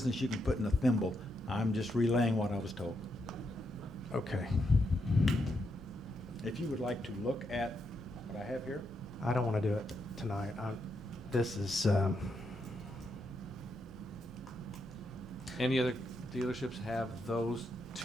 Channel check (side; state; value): both; normal; correlation 0.81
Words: you can put in a thimble. I'm just relaying what I was told. okay. If you would like to look at what I have here, I don't want to do it tonight. This is, Any other dealerships have those